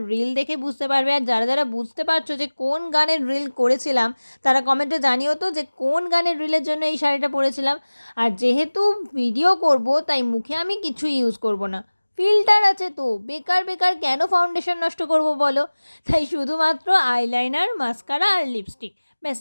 রিল দেখে বুঝতে পারবে। আর যারা যারা বুঝতে পারছো যে কোন গানের রিল করেছিলাম তারা কমেন্টে জানিও তো যে কোন গানের রিলের জন্য এই শাড়িটা পরেছিলাম। আর যেহেতু ভিডিও করব তাই মুখে আমি কিছু ইউজ করব না, ফিল্টার আছে তো বেকার বেকার কেন ফাউন্ডেশন নষ্ট করব বলো। তাই শুধুমাত্র আইলাইনার, মাস্কারা আর লিপস্টিক, ব্যাস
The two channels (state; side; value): inverted; both; correlation -1.00